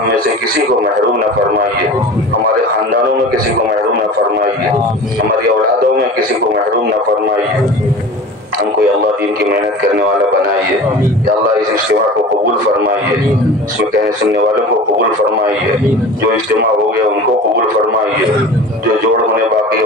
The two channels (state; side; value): normal; both; correlation 0.37